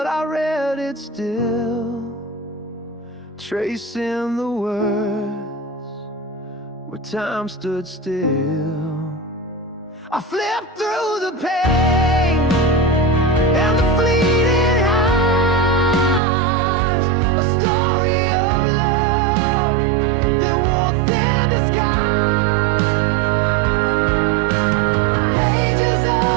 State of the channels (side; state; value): left; drops out; at 16.2 s